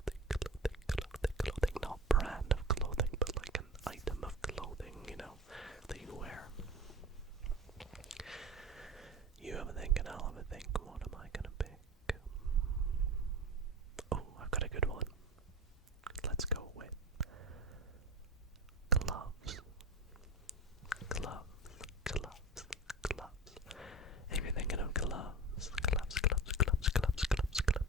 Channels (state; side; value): normal; both; correlation 0.30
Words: clothing. Not brand of clothing, but like an item of clothing, that you wear. You have a think and I'll have a think. What am I gonna pick? Oh, I've got a good one. Let's go with gloves. Gloves, gloves, gloves. If you're thinking of gloves, gloves, gloves, gloves, gloves, gloves,